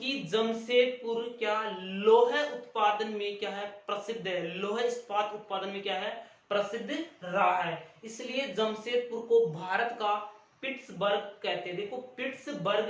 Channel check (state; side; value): identical; both; correlation 1.00